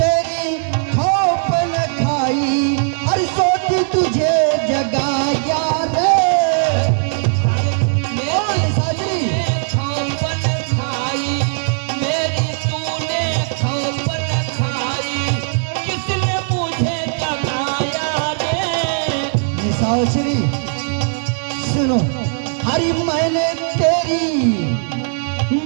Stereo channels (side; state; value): left; silent; 55 dB below the other